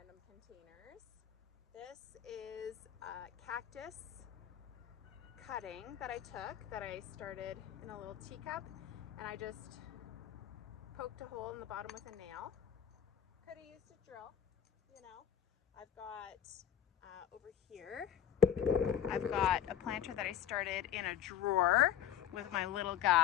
containers. This is a cactus cutting that I took that I started in a little teacup, and I just poked a hole in the bottom with a nail. Could have used a drill, you know. I've got over here, I've got a planter that I started in a drawer with my little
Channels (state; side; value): quieter; right; 9.7 dB